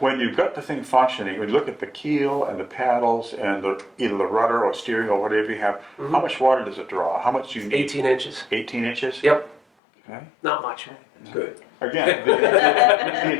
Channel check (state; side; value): drops out; right; at 9.6 s